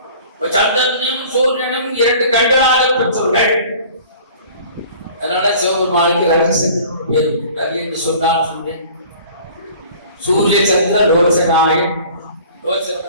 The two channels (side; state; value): both; inverted; correlation -0.47